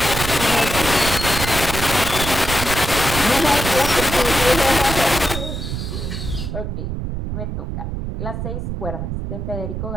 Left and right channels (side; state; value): right; noise; rumble, 4 dB below the sound